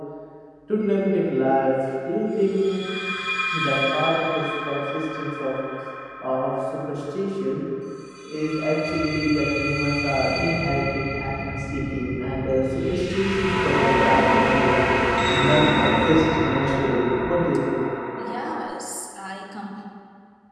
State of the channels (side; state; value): both; identical; correlation 1.00